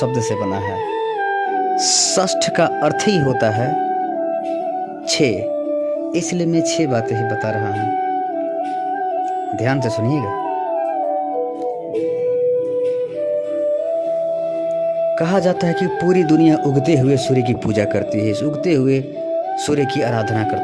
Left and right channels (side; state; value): both; identical; correlation 1.00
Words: से बना है। षष्ठ का अर्थ ही होता है 6, इसलिए मैं 6 बातें ही बता रहा हूं। ध्यान से सुनिएगा। कहा जाता है कि पूरी दुनिया उगते हुए सूर्य की पूजा करती है, इस उगते हुए सूर्य की आराधना